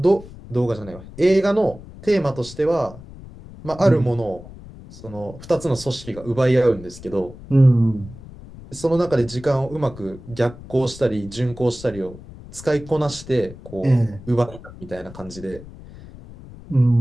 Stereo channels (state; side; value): noise; left; rumble, 17 dB below the sound